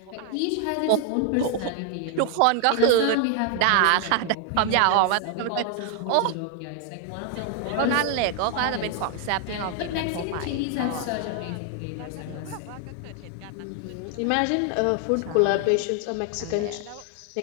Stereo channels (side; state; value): both; different; correlation 0.00